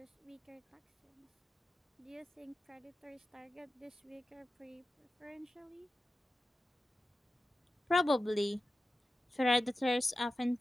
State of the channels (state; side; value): normal; both; correlation 0.94